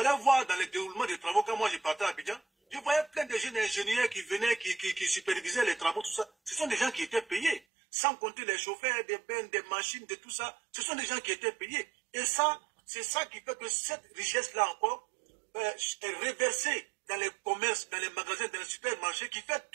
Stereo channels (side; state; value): left; drops out; at 7.6 s